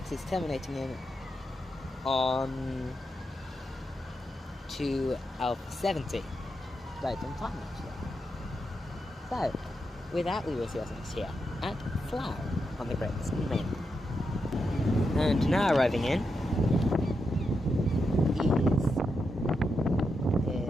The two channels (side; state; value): both; normal; correlation 0.85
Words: is terminating in on to Alpha 70. Right on time actually. So, with that we will see what's next here at Slough on the Great Western Mainline. And now arriving in